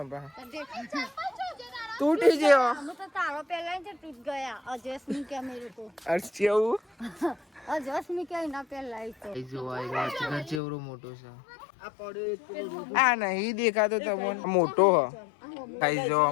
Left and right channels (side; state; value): right; drops out; at 10.6 s